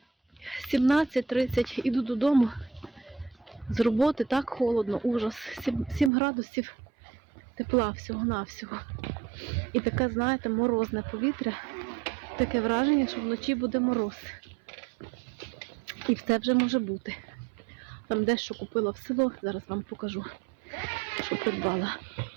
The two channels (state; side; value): drops out; left; at 6.1 s